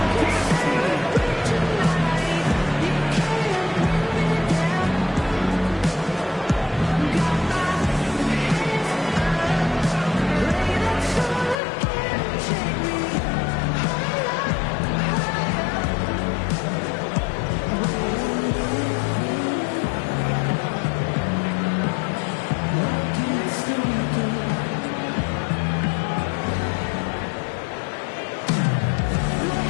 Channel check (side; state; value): right; drops out; at 11.6 s